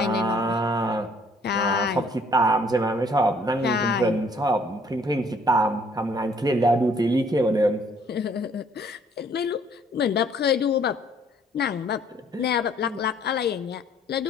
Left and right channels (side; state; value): both; normal; correlation 0.61